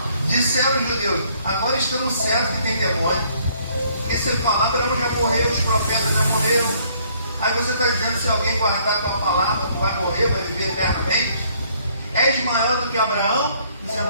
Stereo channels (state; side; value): inverted; both; correlation -0.64